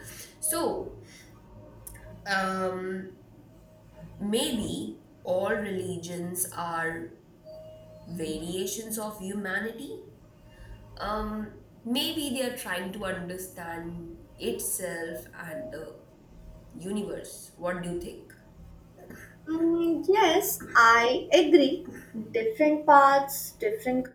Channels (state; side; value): identical; both; correlation 1.00